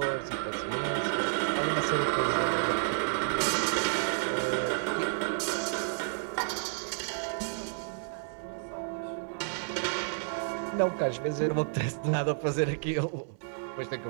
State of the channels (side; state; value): left; silent; digital silence